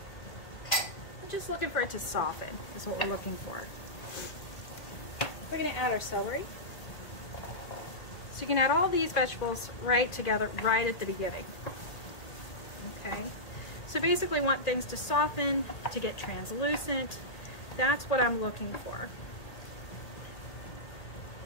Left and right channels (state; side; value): late; right; 1.8 ms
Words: We're just looking for it to soften is what we're looking for. We're going to add our celery. So you can add all these vegetables right together right at the beginning. Okay. So basically want things to soften, to get translucent. That's what I'm looking for.